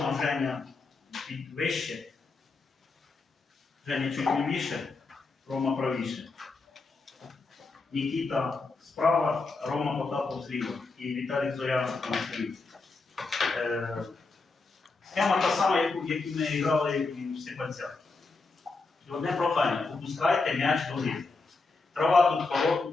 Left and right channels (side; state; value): right; quieter; 3.8 dB